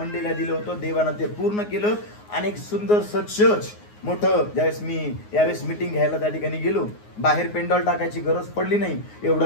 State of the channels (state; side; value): late; right; 9.6 ms